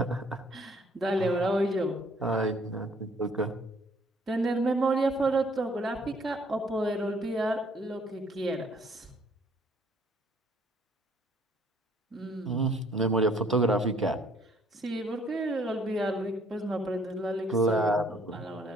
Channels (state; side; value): normal; both; correlation 0.62